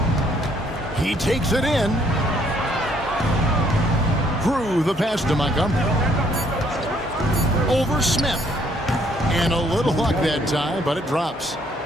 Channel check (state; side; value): normal; both; correlation 0.66